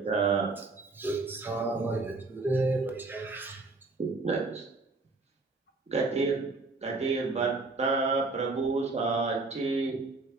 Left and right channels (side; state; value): left; quieter; 3.6 dB